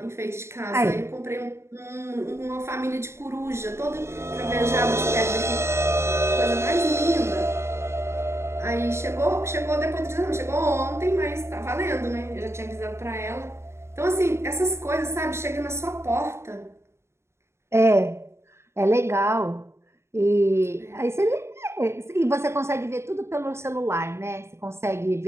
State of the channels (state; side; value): late; left; 0.13 ms